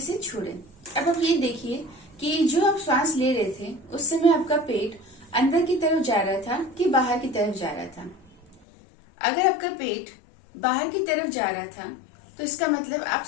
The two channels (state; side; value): drops out; right; at 8.6 s